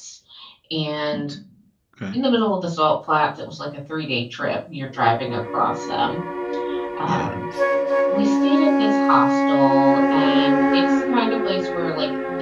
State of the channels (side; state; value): both; identical; correlation 1.00